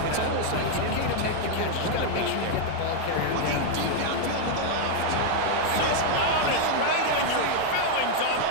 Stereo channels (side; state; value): both; different; correlation 0.00